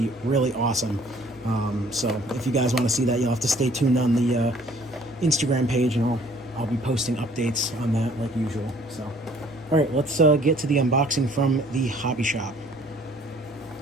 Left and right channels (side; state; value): both; normal; correlation 0.57